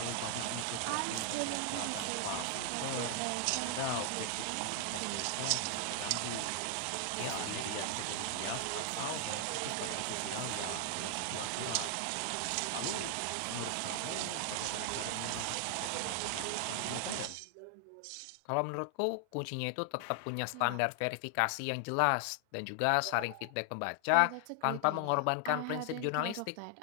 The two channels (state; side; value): different; both; correlation 0.00